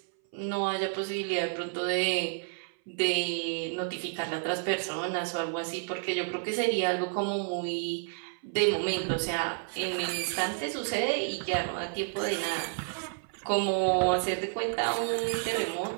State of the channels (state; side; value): silent; left; 58 dB below the other